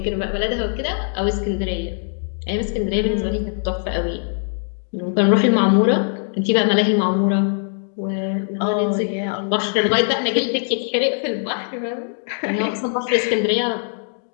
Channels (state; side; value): silent; right; digital silence